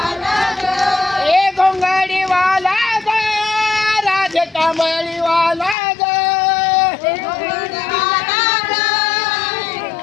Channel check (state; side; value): drops out; right; at 5.8 s